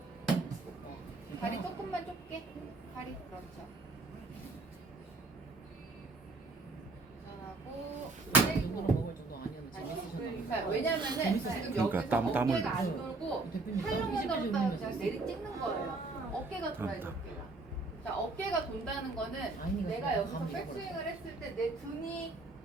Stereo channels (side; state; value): left; quieter; 3.4 dB